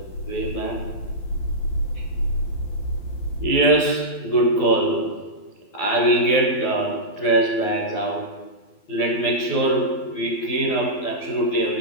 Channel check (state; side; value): late; right; 12 ms